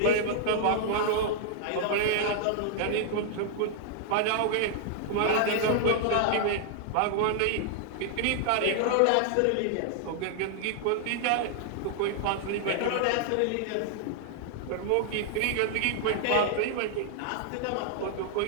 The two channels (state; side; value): different; both; correlation -0.01